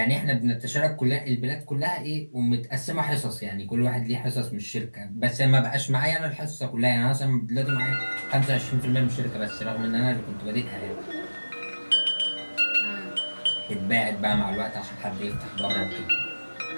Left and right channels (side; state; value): both; inverted; correlation -1.00